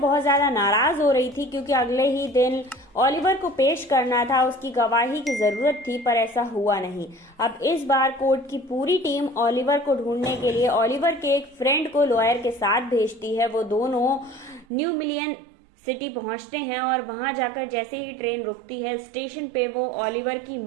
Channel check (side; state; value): left; drops out; at 14.7 s